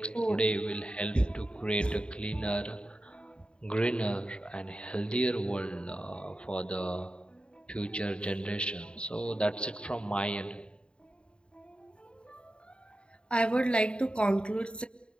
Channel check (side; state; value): right; late; 0.053 ms